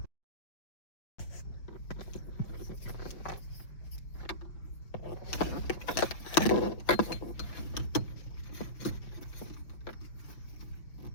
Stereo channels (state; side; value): late; right; 5.6 ms